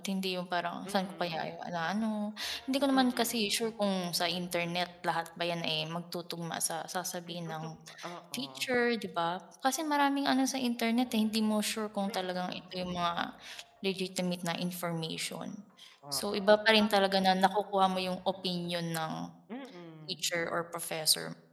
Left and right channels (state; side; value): identical; both; correlation 1.00